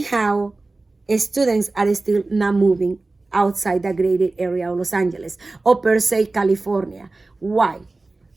students are still not moving outside the greater area of Los Angeles or per se California. Why?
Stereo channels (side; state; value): left; quieter; 3.3 dB